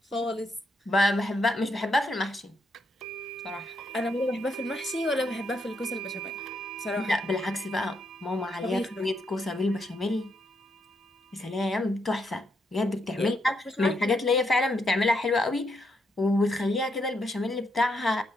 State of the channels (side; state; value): both; normal; correlation 0.78